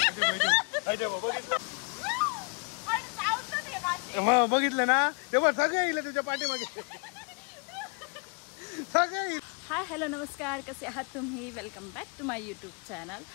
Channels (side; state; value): right; quieter; 35.2 dB